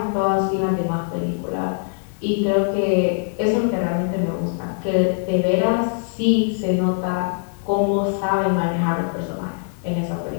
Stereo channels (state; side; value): silent; right; 64 dB below the other